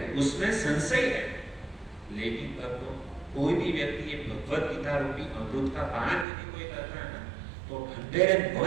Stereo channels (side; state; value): left; drops out; at 6.2 s